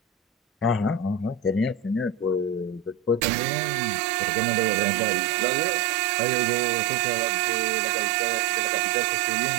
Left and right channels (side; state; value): left; drops out; at 3.2 s